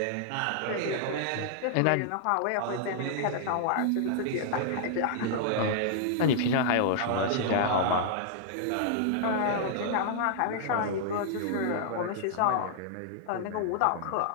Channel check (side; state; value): both; different; correlation -0.01